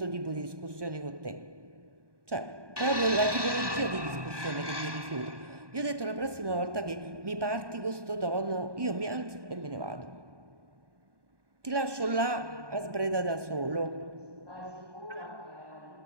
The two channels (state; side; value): late; left; 1.2 ms